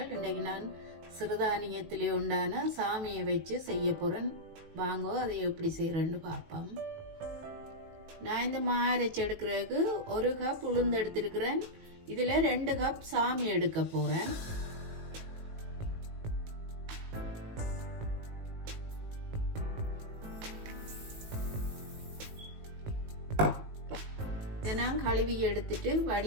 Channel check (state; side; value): late; left; 18 ms